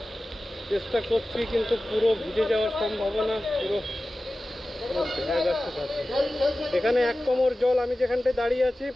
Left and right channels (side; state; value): both; normal; correlation 0.96